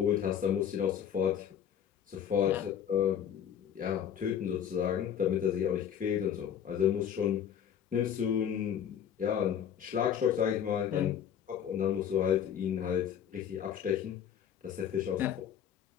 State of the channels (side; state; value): right; quieter; 9.0 dB